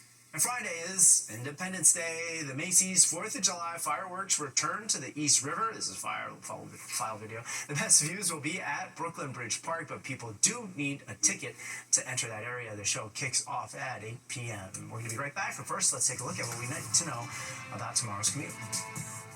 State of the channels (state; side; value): identical; both; correlation 1.00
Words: And Friday is Independence Day. The Macy's 4th of July fireworks return to the East River. This is file video. The best views will be at Brooklyn Bridge Park, but people do need a ticket to enter that area. The show kicks off at 8 p.m. We're going to be right back, but first, let's take a look at what we need to know about tomorrow's commute.